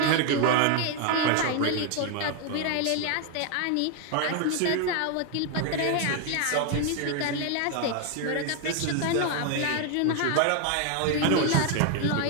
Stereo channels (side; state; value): both; different; correlation 0.01